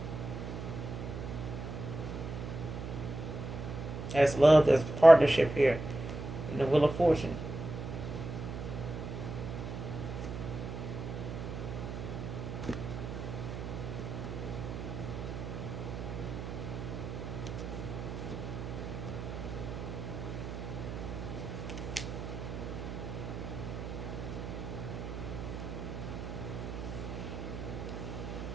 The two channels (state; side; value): noise; right; hum, 6 dB below the sound